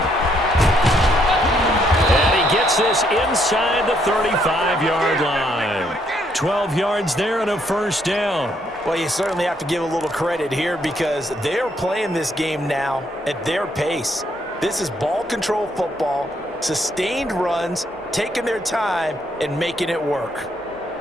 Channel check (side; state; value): both; normal; correlation 0.71